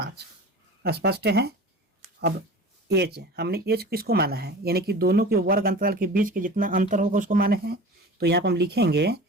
स्पष्ट है। अब एच, हमने एच किसको माना है, यानी कि दोनों के वर्ग अंतराल के बीच के जितना अंतर होगा उसको माने हैं। तो यहाँ पर हम लिखेंगे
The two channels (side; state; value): both; normal; correlation 0.37